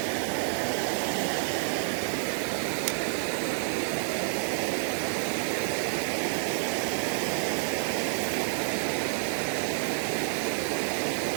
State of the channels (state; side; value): silent; left; digital silence